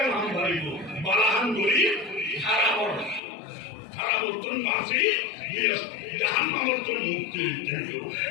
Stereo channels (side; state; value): right; drops out; at 3.2 s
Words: নাম ভাইব বালাহান করি খারাপ খারাপ উত্তর মাসি জাহান মানবতর মুক্তি